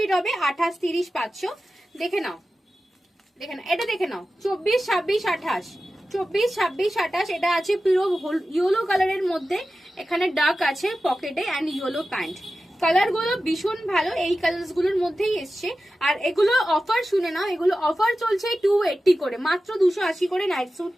হবে, 28-30 পাচ্ছ। দেখে নাও, দেখে নাও এটা, দেখে নাও 24-26-28, 24-26-28। এটা আছে পুরো ইয়েলো কালারের মধ্যে, এখানে ডার্ক আছে পকেটে অ্যান্ড ইয়েলো প্যান্ট। কালার গুলো ভীষণ ভালো, এই কালার গুলোর মধ্যেই এসছে। আর এগুলো অফার শুনে নাও, এগুলো অফার চলছে 280 করে, মাত্র 280 করে নাইট স্যুট।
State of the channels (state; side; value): normal; both; correlation 0.93